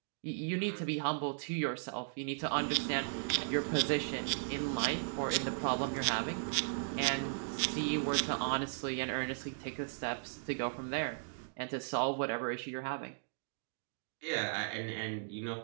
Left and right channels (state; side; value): silent; left; digital silence